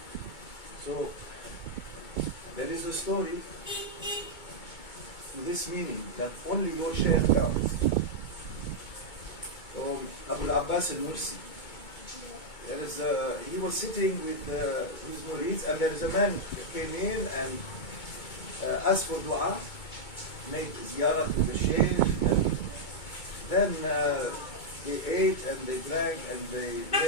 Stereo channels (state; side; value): late; right; 2.2 ms